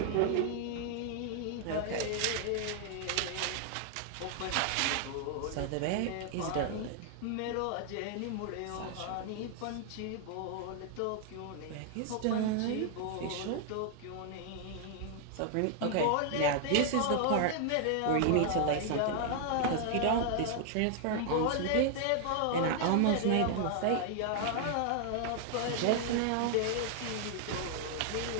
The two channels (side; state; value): both; different; correlation 0.00